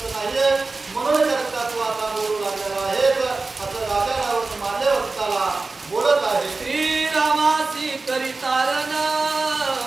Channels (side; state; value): left; quieter; 3.7 dB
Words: नाहीये म्हणून करता तू आता बोलू लागलेला आहे असं राजा रावण माल्यवंताला बोलत आहे. श्रीरामासी करितारण